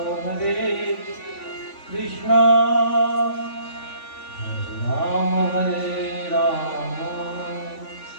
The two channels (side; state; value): right; late; 3.5 ms